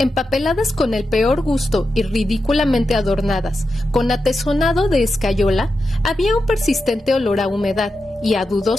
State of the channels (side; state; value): both; normal; correlation 0.89